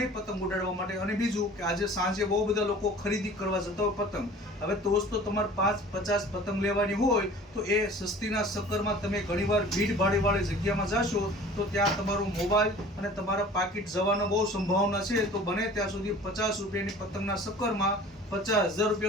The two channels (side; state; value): both; normal; correlation 0.45